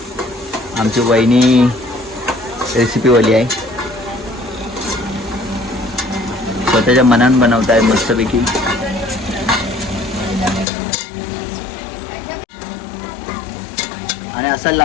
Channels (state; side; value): drops out; right; at 10.7 s